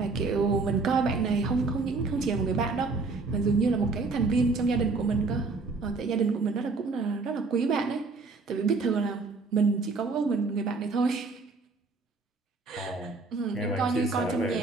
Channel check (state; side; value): quieter; left; 4.0 dB